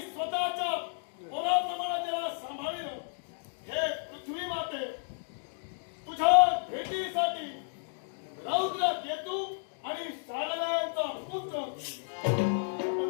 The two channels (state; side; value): silent; right; digital silence